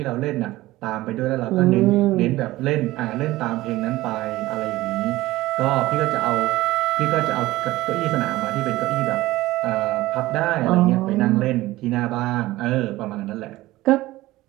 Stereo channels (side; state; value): left; quieter; 17.6 dB